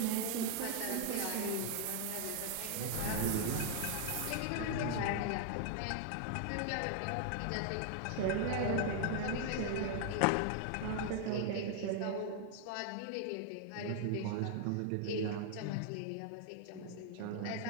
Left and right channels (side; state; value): both; different; correlation 0.00